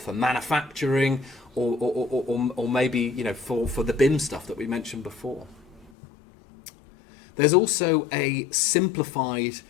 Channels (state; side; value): drops out; right; at 5.9 s